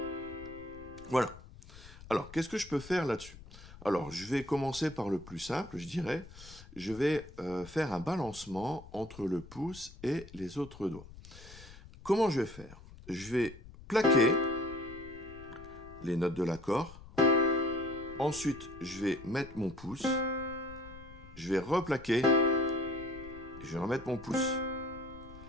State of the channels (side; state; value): left; noise; rumble, 18 dB below the sound